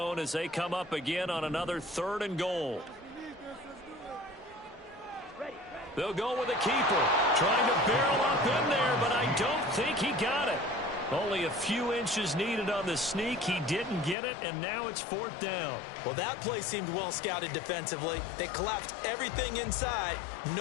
as they come up again on another 3rd and goal. They'll go with a keeper. Trying to barrel up in there, but I don't think he got it. Only a few inches needed on the sneak. He didn't get it, and now it's 4th down. Well, that play seemed well scouted defensively. They collapsed everything inside.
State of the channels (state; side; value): drops out; right; at 14.2 s